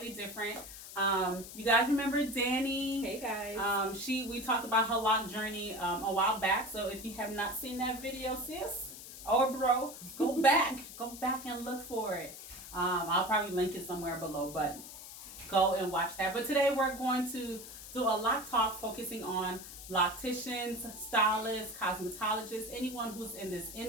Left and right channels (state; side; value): noise; left; hiss, 13 dB below the sound